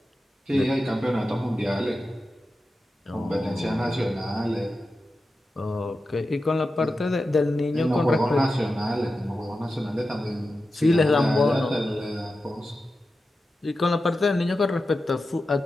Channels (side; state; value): both; normal; correlation 0.92